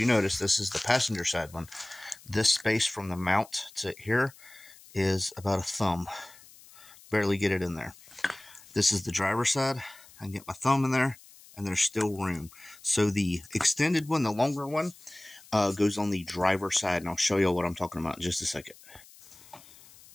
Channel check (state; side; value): noise; left; hiss, 22 dB below the sound